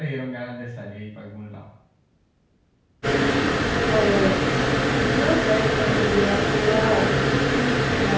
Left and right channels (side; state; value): both; identical; correlation 1.00